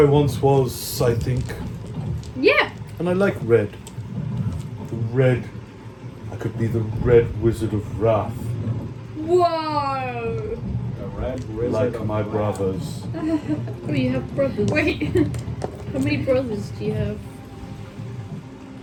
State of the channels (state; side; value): identical; both; correlation 1.00